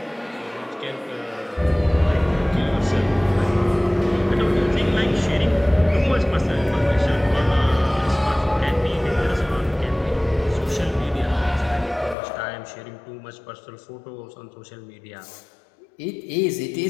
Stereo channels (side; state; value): right; drops out; at 12.2 s